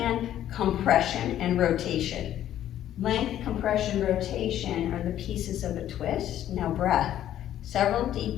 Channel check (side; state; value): right; quieter; 11.7 dB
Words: compression and rotation. Length, compression, rotation are the pieces of a twist. Now breath. Several